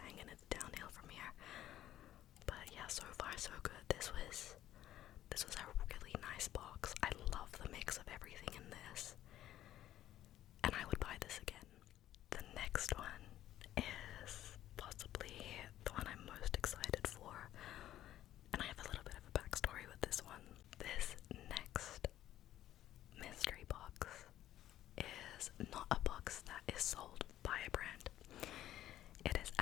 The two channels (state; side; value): quieter; right; 12.8 dB